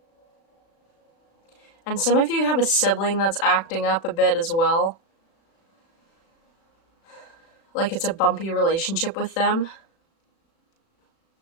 And some of you have a sibling that's acting up a bit as well. Like it's a bumpy relationship with them.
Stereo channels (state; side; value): late; right; 36 ms